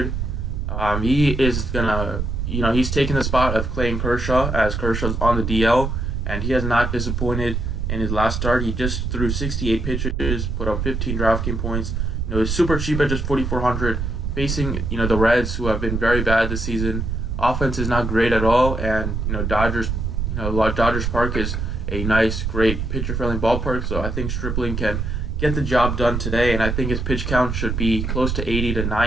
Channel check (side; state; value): right; noise; rumble, 2 dB below the sound